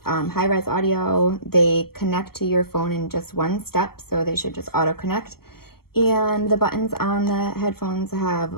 high-res audio. They connect to your phone in just one step, so they should just auto-connect. And the buttons on the headphones have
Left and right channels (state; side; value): late; right; 0.95 ms